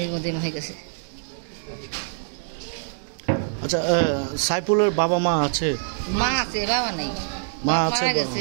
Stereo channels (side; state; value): left; silent; digital silence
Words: মধ্যে হয়ে গেছে। আচ্ছা, সাইফুলের বাবা মা আছে? মা আছে, বাবা নেই। মা আছে, মারা